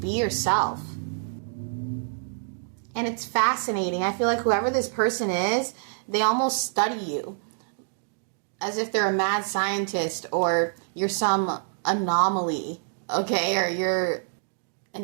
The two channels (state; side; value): silent; left; digital silence